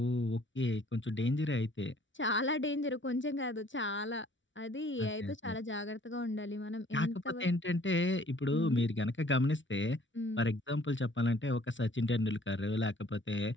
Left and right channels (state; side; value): late; right; 0.55 ms